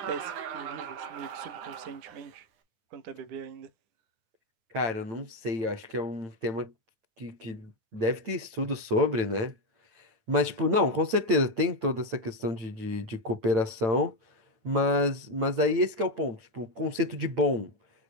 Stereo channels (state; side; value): late; left; 9.0 ms